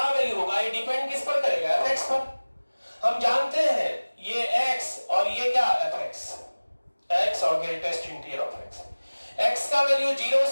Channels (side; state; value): both; inverted; correlation -1.00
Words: वैल्यू होगा, ये डिपेंड किस पर करेगा, fx पर। हम जानते हैं ये x और ये क्या fx, x और greatest integer of x, x का वैल्यू 0